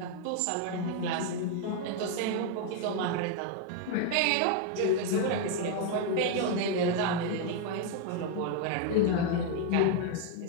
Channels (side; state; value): both; different; correlation 0.00